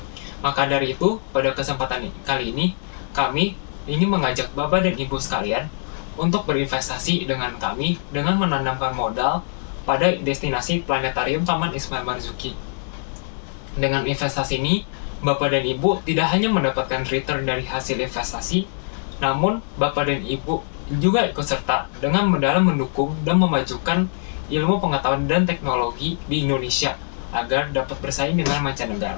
Maka dari itu, pada kesempatan kali ini, kami ingin mengajak Bapak dan Ibu sekalian untuk berinvestasi dengan kami dengan menanamkan modal pada destinasi Planetarium Taman Ismail Marzuki. Dengan investasi ini, Bapak dan Ibu tidak hanya mendapatkan return dari hasil investasi, namun Bapak dan Ibu juga ikut serta dengan dalam mendukung dan memajukan ilmu pengetahuan dan teknologi di Indonesia agar dapat bersaing dengan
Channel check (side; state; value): right; silent; digital silence